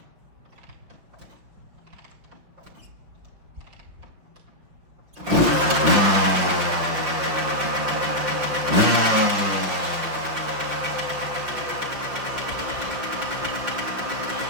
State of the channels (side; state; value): left; late; 5.8 ms